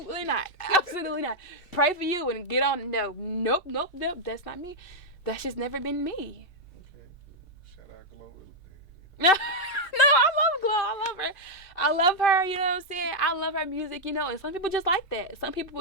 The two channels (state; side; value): normal; both; correlation -0.03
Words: not. Absolutely not. Pray for you and get on. No. Nope. That's not me. That's just never been me. Okay. Shout out Glow. No, I love Glow. I love her, you know what I'm saying? I love her music, and some people just like that. Some